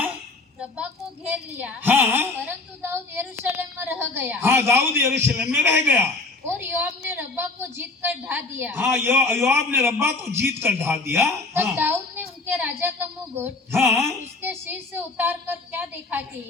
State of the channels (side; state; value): right; quieter; 3.5 dB